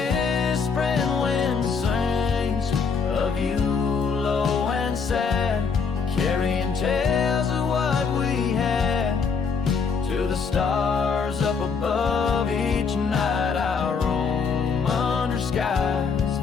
wind sings of you low and sad, carrying tales of what we had to the stars up above. Each night I roam under skies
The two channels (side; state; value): right; quieter; 5.5 dB